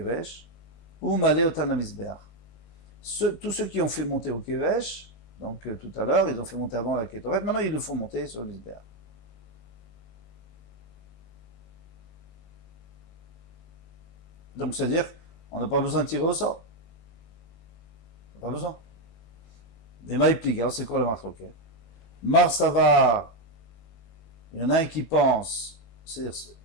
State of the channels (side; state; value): right; late; 18 ms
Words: ou male otan la Misbéa. Tous ceux qui ont fait monter au kevesh, Donc tout à l'heure, ils ont fait monter avant la Kétoret, maintenant ils le font monter sur le Mizbeach. Donc c'est-à-dire, on n'a pas besoin de tirer au sort. On n'a pas besoin. Mais Maïpliga, c'est quoi le marloquet? Marsavar, il y en a un qui pense, c'est